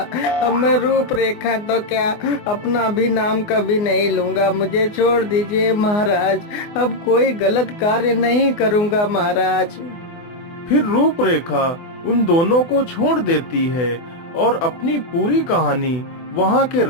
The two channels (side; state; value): right; late; 24 ms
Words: अब मैं रूपरेखा तो क्या, अपना भी नाम कभी नहीं लूंगा। मुझे छोड़ दीजिए महाराज, अब कोई गलत कार्य नहीं करूंगा महाराज। फिर रूपरेखा उन दोनों को छोड़ देती है और अपनी पूरी कहानी वहाँ के